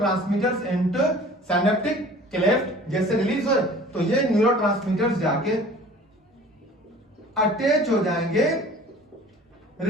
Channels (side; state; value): both; normal; correlation 0.46